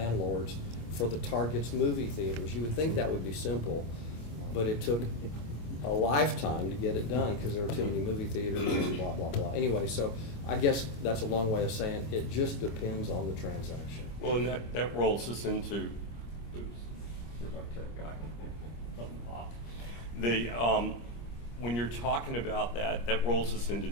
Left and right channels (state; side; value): late; right; 25 ms